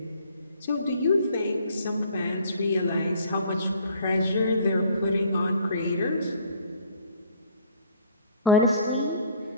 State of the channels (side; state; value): both; inverted; correlation -0.54